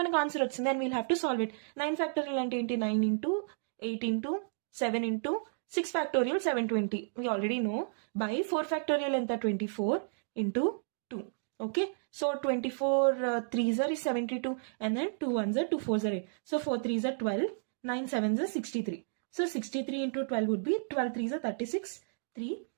ఆన్సర్ వచ్చింది. And we'll have to solve it. 9 factorial అంటే ఏంటి? 9 into 8 into 7 into 6 factorial 720. We already know. By 4 factorial enta 24 into 2. Okay. So 24 3s are 72 and then 2 1s are 2 4s are 8. So 4 3s are 12. 9 7s are 63. So 63 into 12 would be 12 3s are 36. 3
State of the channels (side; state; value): left; silent; digital silence